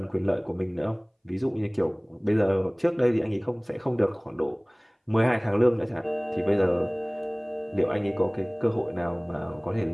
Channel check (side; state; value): both; identical; correlation 1.00